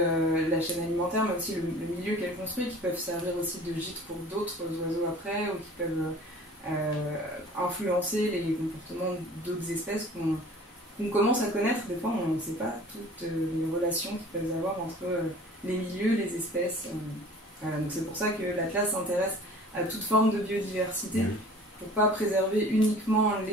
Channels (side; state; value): both; normal; correlation 0.46